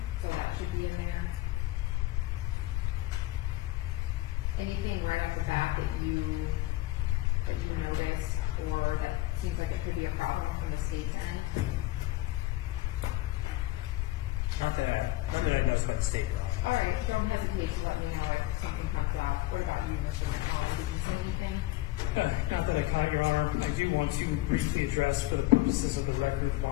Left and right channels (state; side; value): quieter; right; 17.6 dB